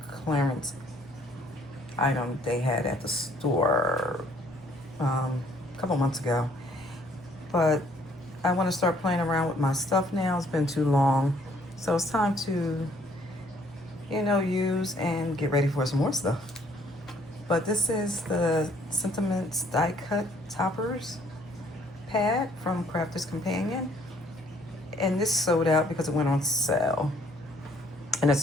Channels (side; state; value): both; normal; correlation 0.62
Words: clearance item they had at the store a couple months ago. But I want to start playing around with my stuff now. It's been too long. So it's time to, use and get ready for some more stuff. But this is the Sentiments Die Cut Toppers pad from Crafter's Companion. And this sold out because it went on sale. And it